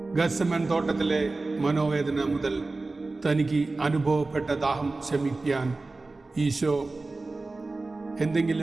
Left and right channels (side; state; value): left; quieter; 3.4 dB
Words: ഗത്സമൻ തോട്ടത്തിലെ മനോവേദന മുതൽ തനിക്ക് അനുഭവപ്പെട്ട ദാഹം ശമിപ്പിക്കാൻ ഈശോ